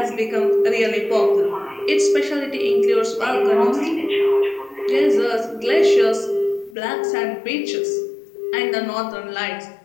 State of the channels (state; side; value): drops out; right; at 6.8 s